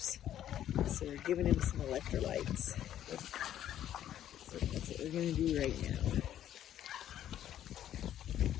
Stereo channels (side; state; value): right; quieter; 11.3 dB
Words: So we're giving him some electrolytes. So that's what we're going to do right now.